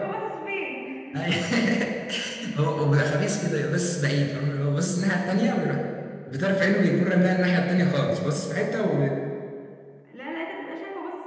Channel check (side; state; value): both; identical; correlation 1.00